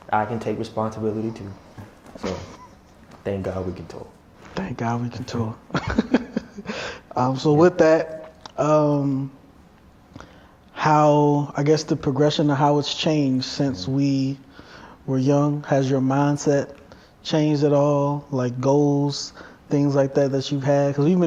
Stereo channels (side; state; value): both; identical; correlation 1.00